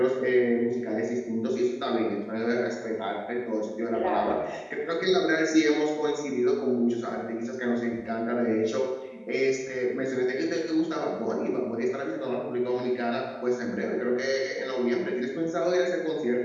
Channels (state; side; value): identical; both; correlation 1.00